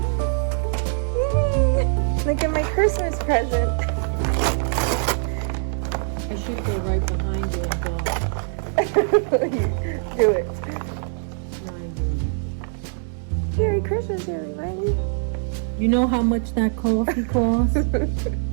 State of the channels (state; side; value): silent; left; digital silence